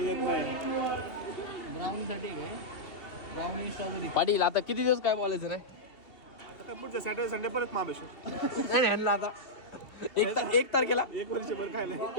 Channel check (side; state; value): right; late; 2.8 ms